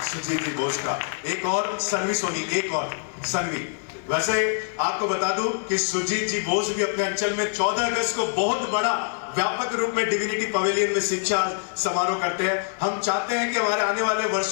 सुजीत जी बोस का। एक और सन्वी सोनी, एक और सन्वी। वैसे आपको बता दूं कि सुजीत जी बोस भी अपने अंचल में 14 अगस्त को बहुत बड़ा व्यापक रूप में डिविनिटी पवेलियन में शिक्षा समारोह करते हैं। हम चाहते हैं कि हमारे आने वाले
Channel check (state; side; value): silent; right; digital silence